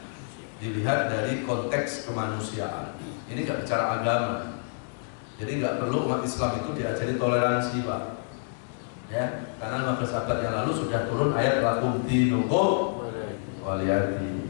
dilihat dari konteks kemanusiaan. Ini nggak bicara agama. Jadi nggak perlu umat Islam itu diajari toleransi, Pak. Ya, karena 15 abad yang lalu sudah turun ayat lakum dinukum waliyati.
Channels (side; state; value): right; silent; digital silence